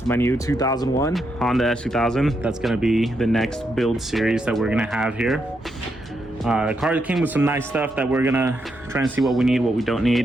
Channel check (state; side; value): normal; both; correlation 0.81